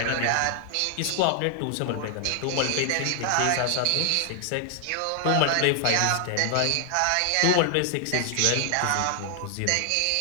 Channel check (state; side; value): different; both; correlation 0.00